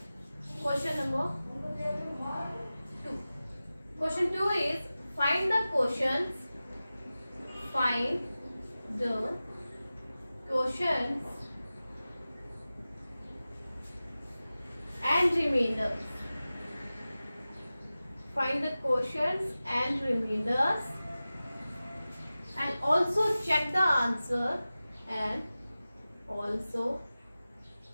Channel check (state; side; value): inverted; both; correlation -0.96